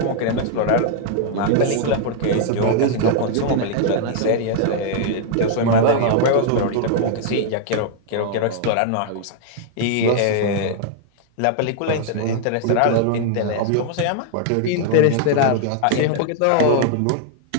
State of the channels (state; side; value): different; both; correlation 0.00